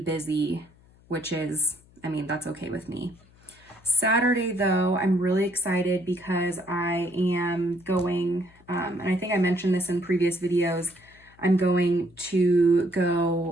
which is, I mean, that's okay with me. Saturday though, I'm really excited because I am going, and I think I mentioned this in previous videos, I'm going to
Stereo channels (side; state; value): left; noise; hum, 28 dB below the sound